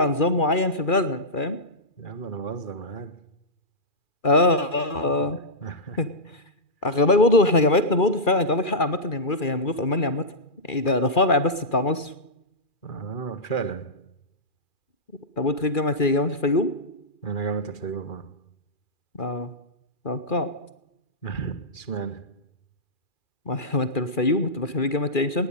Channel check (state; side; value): late; right; 2.4 ms